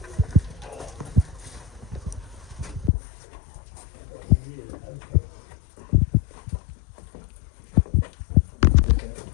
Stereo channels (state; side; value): drops out; right; at 2.9 s